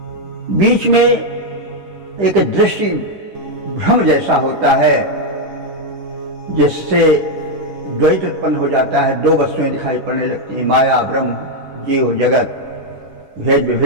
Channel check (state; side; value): late; left; 10 ms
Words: बीच में एक दृष्टि भ्रम जैसा होता है, जिससे द्वैत उत्पन्न हो जाता है। दो वस्तुएं दिखाई पड़ने लगती हैं, माया ब्रह्म, जीव जगत, भेद